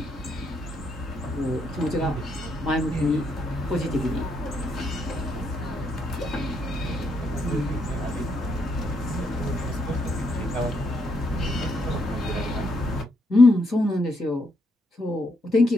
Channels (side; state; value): both; normal; correlation 0.76